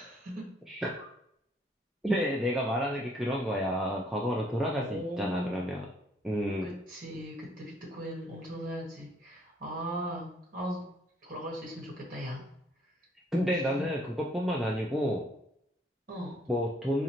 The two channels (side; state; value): both; normal; correlation 0.65